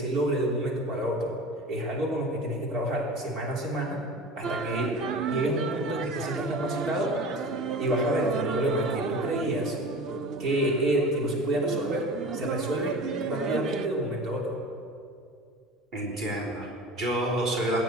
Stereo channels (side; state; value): both; normal; correlation 0.36